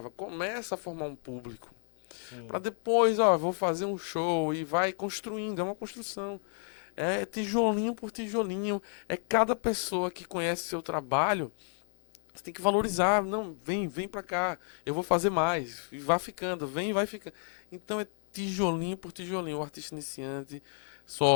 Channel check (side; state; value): right; silent; 57 dB below the other